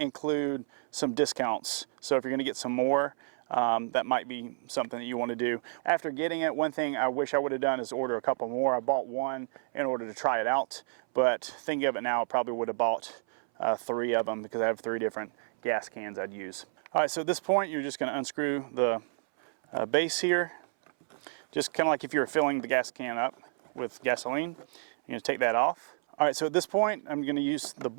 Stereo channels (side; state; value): left; silent; 58 dB below the other